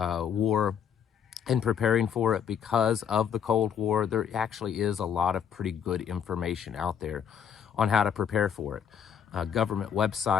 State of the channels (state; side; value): quieter; right; 8.0 dB